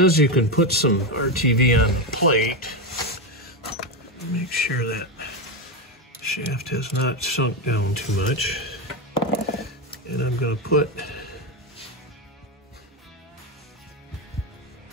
you can put some RTV on the plate. Make sure that shaft has not sunk down too much. And I'm going to put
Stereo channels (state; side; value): normal; both; correlation 0.11